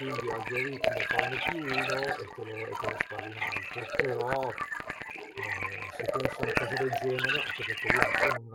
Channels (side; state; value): both; identical; correlation 1.00